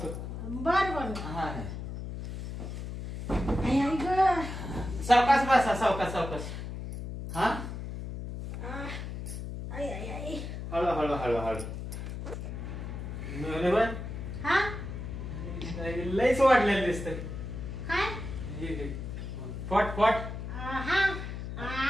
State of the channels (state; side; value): noise; left; hum, 7 dB below the sound